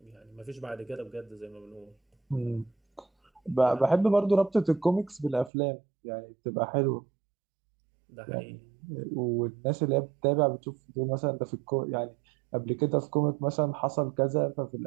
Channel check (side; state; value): left; drops out; at 5.5 s